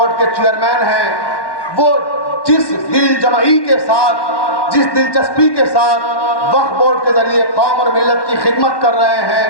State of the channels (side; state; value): right; late; 1.1 ms